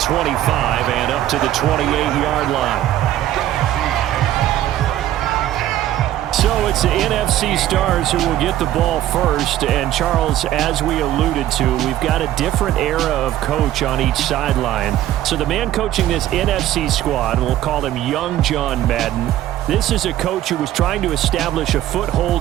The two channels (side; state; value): left; quieter; 13.1 dB